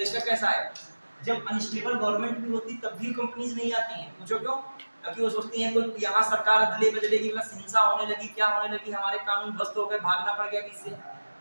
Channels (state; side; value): inverted; both; correlation -1.00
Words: कैसा है। जब अनस्टेबल गवर्नमेंट भी होती तब भी कंपनीज नहीं आती हैं, पूछो क्यों, क्योंकि वो सोचती हैं कोई यहाँ सरकार अदले बदलेगी, हिंसा होने लगी, क्या होने लगी, हमारे कानून ध्वस्त हो गए, भागना पड़ गया इससे,